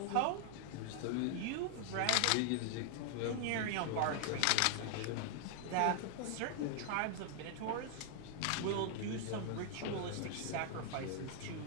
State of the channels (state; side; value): different; both; correlation 0.00